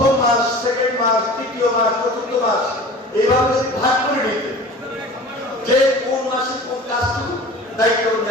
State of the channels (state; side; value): normal; both; correlation 0.40